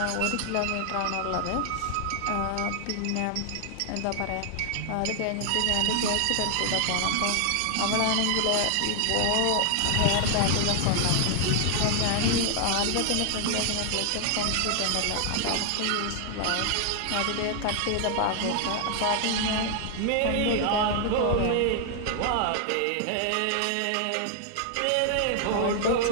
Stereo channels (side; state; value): both; different; correlation 0.00